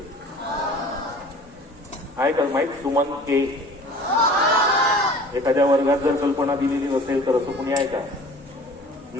आहे का माहित सुमन के? एखाद्या वर्गात जर कल्पना दिलेली नसेल तर असं कुणी आहे का?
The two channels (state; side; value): normal; both; correlation 0.45